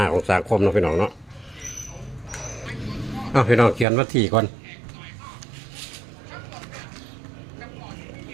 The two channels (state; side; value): drops out; left; at 3.9 s